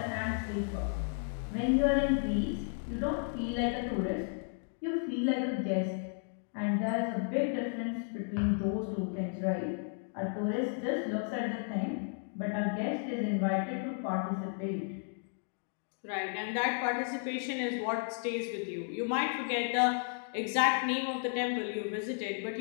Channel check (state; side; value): silent; right; 55 dB below the other